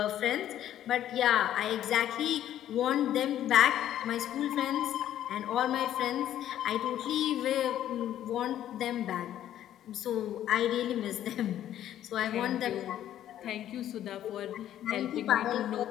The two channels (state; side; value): quieter; right; 11.7 dB